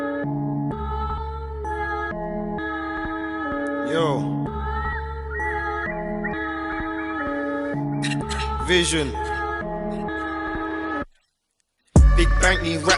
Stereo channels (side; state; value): both; identical; correlation 1.00